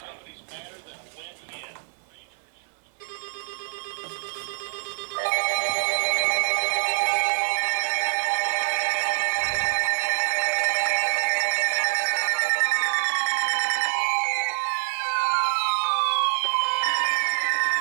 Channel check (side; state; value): left; silent; digital silence